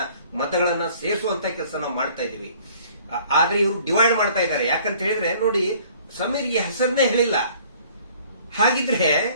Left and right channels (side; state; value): both; inverted; correlation -0.55